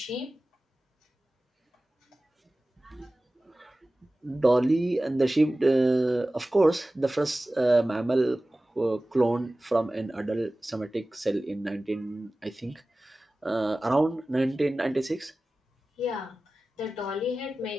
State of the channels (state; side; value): normal; both; correlation 0.97